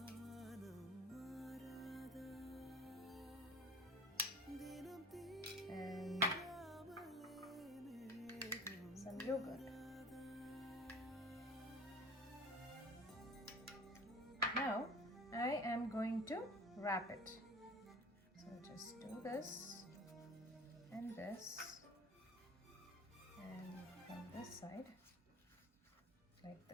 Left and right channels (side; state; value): both; normal; correlation 0.40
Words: And some yogurt. Now I am going to wrap it. So just do this and this, and from this side like